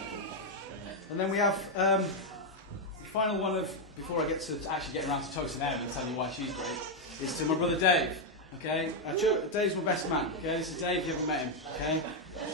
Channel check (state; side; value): normal; both; correlation 0.01